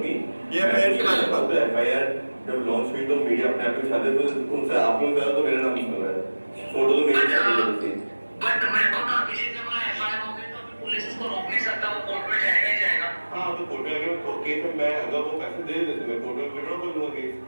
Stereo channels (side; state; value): both; inverted; correlation -1.00